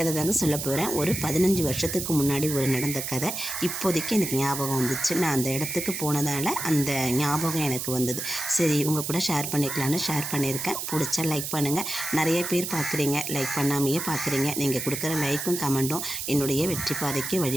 தாங்க சொல்ல போகிறேன். ஒரு 15 வருஷத்துக்கு முன்னாடி நடந்த கதை இப்போதைக்கு எனக்கு ஞாபகம் வந்துச்சு. நான் அந்த இடத்துக்கு போனதால் அந்த ஞாபகம் எனக்கு வந்தது. சரி, உங்கள் கூட ஷேர் பண்ணிக்கலான்னு ஷேர் பண்ணியிருக்கேன். பிடிச்சா லைக் பண்ணுங்கள். நிறைய பேர் பார்க்குறீங்க, லைக் பண்ணாமையே பார்க்குறீங்க. நீங்கள் கொடுக்குற லைக்கும் கமெண்ட்டும் என்னுடைய வெற்றி பாதைக்கு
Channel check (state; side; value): noise; right; hiss, 4 dB below the sound